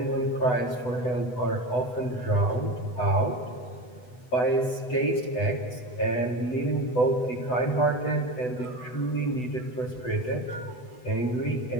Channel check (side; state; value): right; late; 8.0 ms